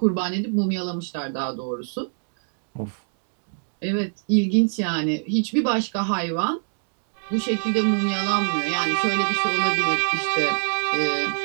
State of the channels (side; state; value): left; silent; 55 dB below the other